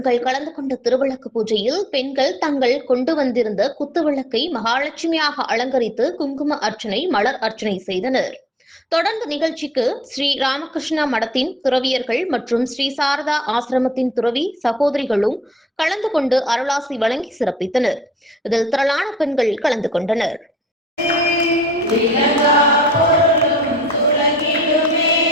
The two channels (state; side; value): normal; both; correlation 0.60